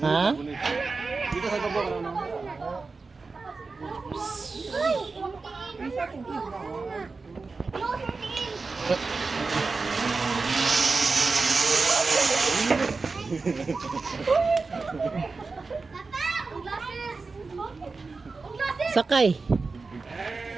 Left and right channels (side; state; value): left; quieter; 4.1 dB